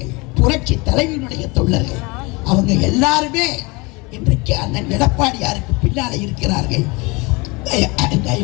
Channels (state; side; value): quieter; right; 26.2 dB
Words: புரட்சி தலைவருடைய தொண்டர்கள். அவங்க எல்லாருமே இன்றைக்கு அண்ணன் எடப்பாடியாருக்கு பின்னாலே இருக்கிறார்கள்.